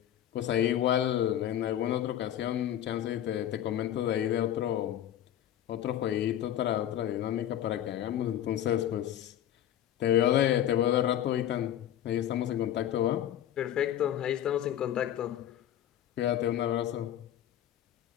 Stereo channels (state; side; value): quieter; right; 11.3 dB